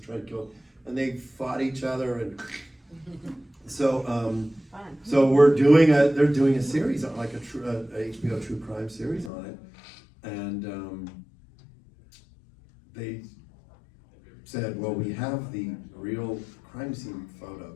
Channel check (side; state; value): right; drops out; at 9.3 s